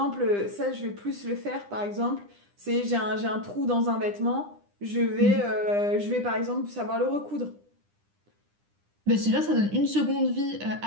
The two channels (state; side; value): late; left; 9.9 ms